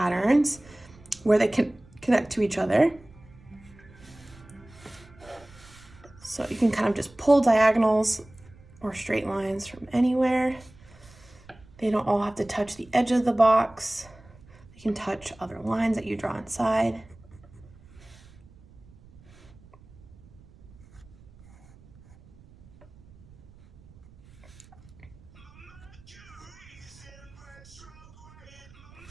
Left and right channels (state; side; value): noise; right; rumble, 23 dB below the sound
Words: where they can connect to each other. So you can kind of just pull diagonals or straight lines from anywhere. They don't all have to touch the edge of the box. You can touch other lines that you draw inside.